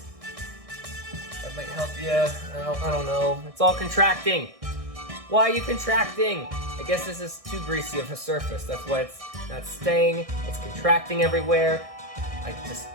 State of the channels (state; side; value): late; left; 1.6 ms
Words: That might help you. I don't know. It's all contracting. Why are you contracting? I guess this is too greasy of a surface. That's why it's not staying. It's contracting everywhere. I just